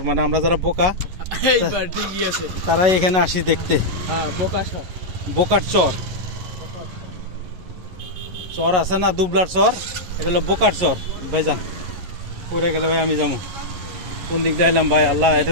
মানে আমরা যারা বোকা তারাই এখানে আসি দেখতে। বোকার চর, চর আছে না দুবলার চর, এটা হলো বোকার চর। ভাইজান পড়ে গেলে ভাই আমি যাবো কোন দিক দিয়ে এলাম ভাই? আল্লাহ, এটা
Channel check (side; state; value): left; late; 11 ms